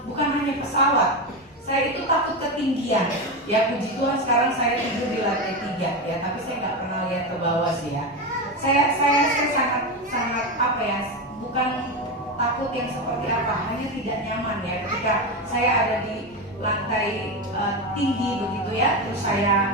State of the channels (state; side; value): normal; both; correlation 0.15